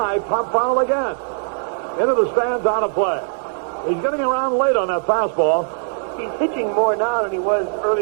pop foul again. Into the stands, out of play. He's getting around late on that fastball. He's pitching more now than he was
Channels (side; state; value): left; silent; 61 dB below the other